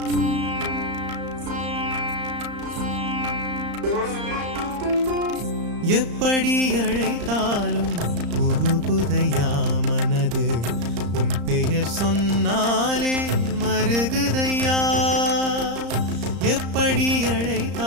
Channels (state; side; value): late; left; 34 ms